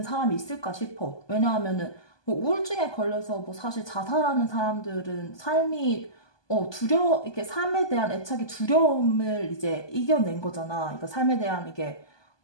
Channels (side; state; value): right; late; 1.2 ms